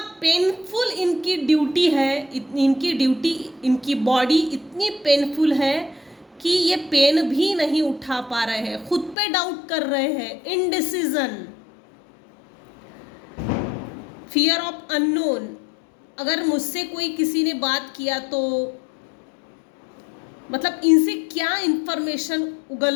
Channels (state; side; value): drops out; right; at 9.2 s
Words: पेनफुल इनकी ड्यूटी है, इनकी बॉडी इतनी पेनफुल है कि ये पेन भी नहीं उठा पा रहे हैं, खुद पे डाउट कर रहे हैं, इनडिसीजन, फियर ऑफ अननोन। अगर मुझसे कोई किसी ने बात किया तो मतलब इनसे क्या इंफॉर्मेशन